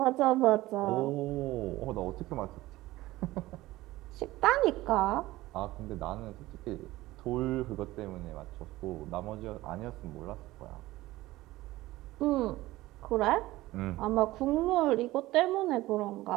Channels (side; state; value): left; quieter; 17.7 dB